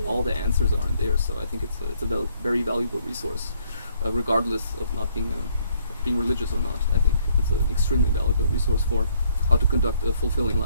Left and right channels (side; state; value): both; inverted; correlation -0.66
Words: all the answers are in there. So I think it's a very valuable resource, regardless of not being religious or not. I think it's an extremely valuable resource for how to conduct a fulfilling